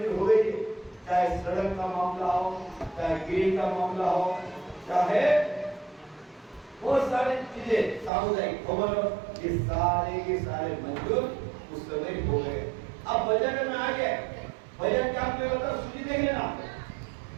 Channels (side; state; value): left; drops out; at 8.1 s